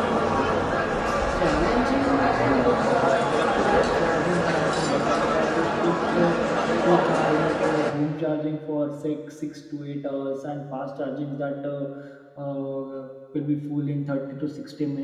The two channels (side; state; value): both; identical; correlation 1.00